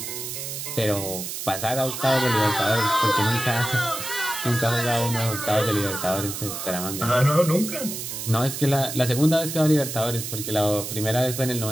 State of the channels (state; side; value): noise; right; hiss, 6 dB below the sound